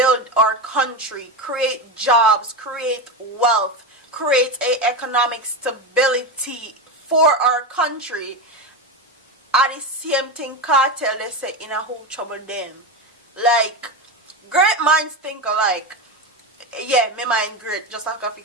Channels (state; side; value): normal; both; correlation 0.17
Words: our country, create jobs, create wealth, create a economic stability for our country. At the same thing, Kartel, they say, in a whole trouble them. Like, great minds think alike. Yeah, me mind great, just like a